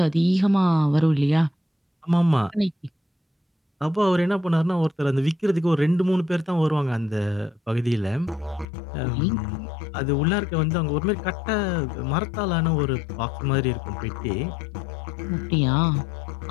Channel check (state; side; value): drops out; right; at 8.7 s